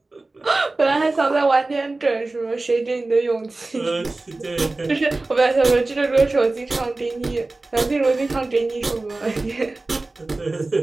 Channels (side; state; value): left; quieter; 3.2 dB